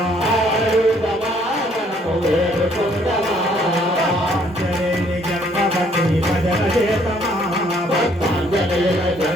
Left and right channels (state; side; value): normal; both; correlation 0.64